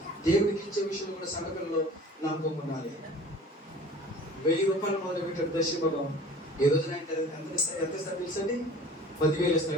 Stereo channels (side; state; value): both; normal; correlation 0.44